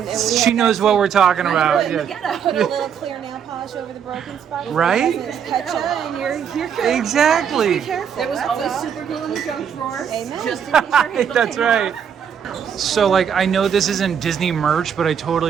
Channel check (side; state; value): left; quieter; 7.9 dB